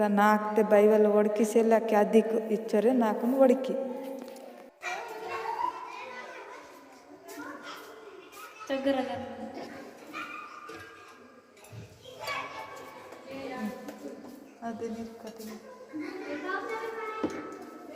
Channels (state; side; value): identical; both; correlation 1.00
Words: నాకుతే బైవల్ ఒడికిసేలాకి అదికు ఇచ్చరే నాకును ఒడికి అదే నిర్కతి